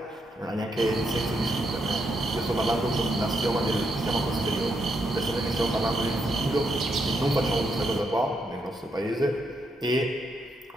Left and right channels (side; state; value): both; normal; correlation 0.80